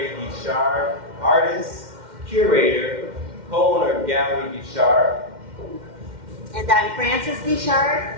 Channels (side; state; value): left; late; 2.1 ms